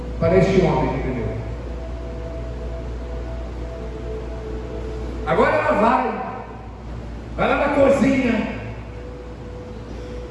para este homem que entendeu. Agora ela vai lá na cozinha,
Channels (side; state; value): both; identical; correlation 1.00